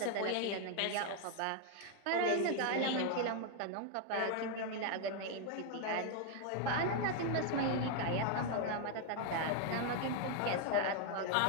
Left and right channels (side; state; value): both; different; correlation 0.00